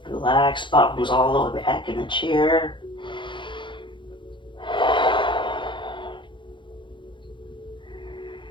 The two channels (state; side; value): late; right; 0.23 ms